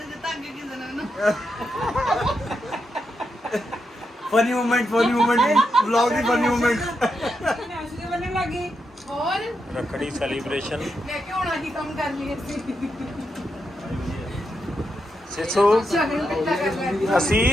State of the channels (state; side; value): normal; both; correlation 0.84